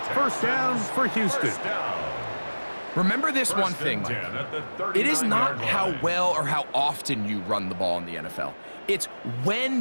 1st down for Houston. Remember this one thing, Mike. It is not how well or how often you run the ball in the NFL. It's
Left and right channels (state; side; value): inverted; both; correlation -1.00